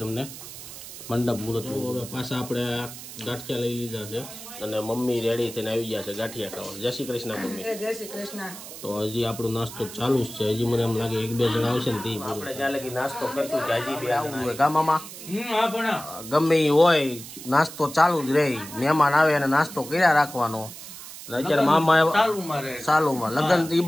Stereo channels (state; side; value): noise; right; hiss, 13 dB below the sound